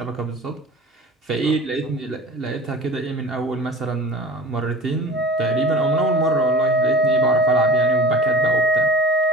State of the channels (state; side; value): normal; both; correlation 0.40